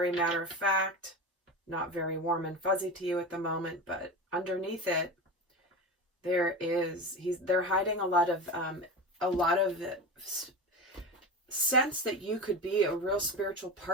matter of fact, not very warm and fuzzy to you at the moment, but underneath it, they're hiding a lot of sense that you could be a real spiritual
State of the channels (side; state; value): both; normal; correlation 0.25